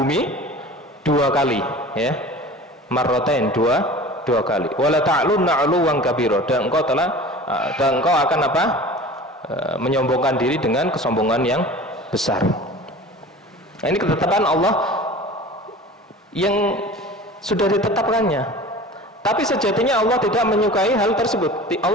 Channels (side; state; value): both; normal; correlation 0.39